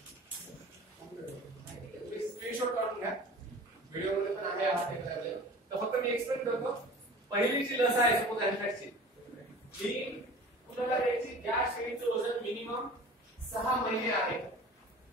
स्क्रीनशॉट काढून घ्या, व्हिडिओ मध्ये पण आहे अवेलेबल. तर फक्त मी एक्सप्लेन करतो. पहिली जी लस आहे सपोज अँथ्रॅक्सची ही कुणाला द्यायची ज्या शेळीचं वजन मिनिमम 6 महिने आहे.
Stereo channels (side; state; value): both; normal; correlation 0.41